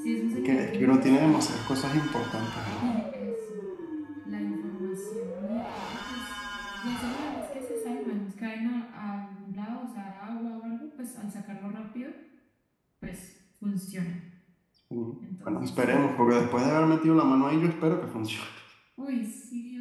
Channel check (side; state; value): both; identical; correlation 1.00